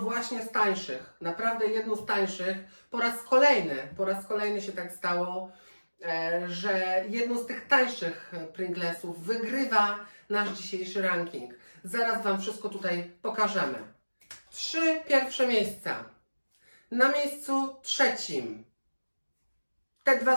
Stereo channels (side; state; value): both; inverted; correlation -1.00